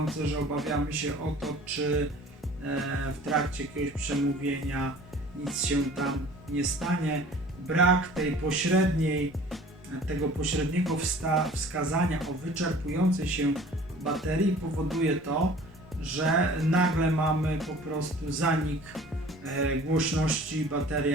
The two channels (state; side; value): normal; both; correlation 0.47